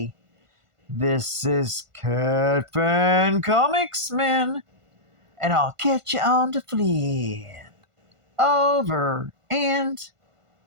This is Catfan Comics Man, and I'll catch you on the flip. Over and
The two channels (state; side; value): late; left; 1.5 ms